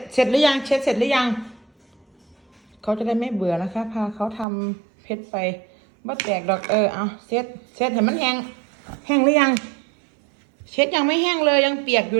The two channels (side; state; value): left; drops out; at 4.5 s